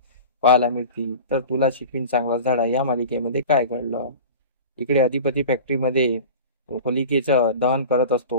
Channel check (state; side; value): inverted; both; correlation -0.36